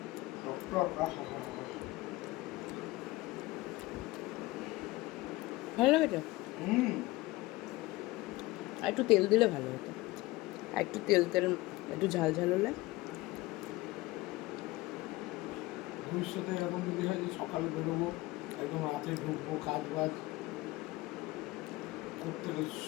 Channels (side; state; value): right; quieter; 20.0 dB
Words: ভালো লেগেছে। আর একটু তেল দিলে ভালো হতো, আর একটু তেল একটু ঝাল ঝাল হলে। ভবিষ্যতে এরকম যদি হয় যে সকালে বেরোবো, একদম রাতে ঢুকবো, কাজ বাজ করতে